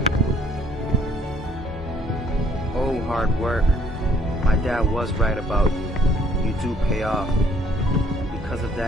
Hard work. My dad was right about you. You do pay off. Because of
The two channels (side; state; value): both; normal; correlation 0.62